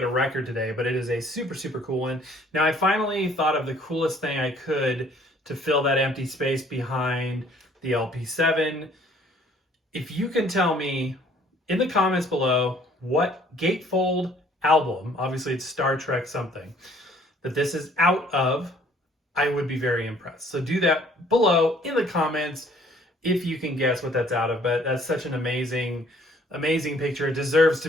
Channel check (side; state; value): both; normal; correlation 0.58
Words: a record today, but it is a super cool one. Now I finally thought of the coolest thing I could to fill that empty space behind the LP7. If you can tell me in the comments below what gatefold album, obviously it's Star Trek something, that this is out of, I would be very impressed. So do that below in the comments if you can guess what that's out of. But that's such an amazing picture. It deserves